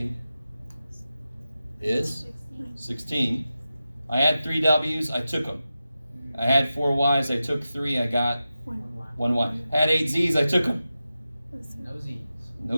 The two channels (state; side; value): inverted; both; correlation -0.92